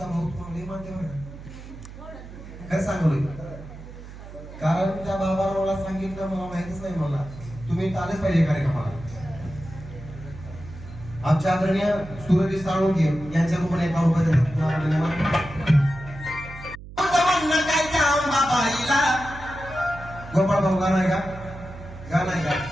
भाऊ तुम्हाला मानते बरं काय सांगू कारण त्या बाबाला मला सांगितलं मला माहितीच नाही मला तुम्ही आलेच पाहिजे कार्यक्रमाला आमच्या आदरणीय सूरज साळुंके यांच्या रूपाने एका गोपाळ भाऊ गाणं आहे का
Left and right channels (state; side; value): noise; right; hum, 14 dB below the sound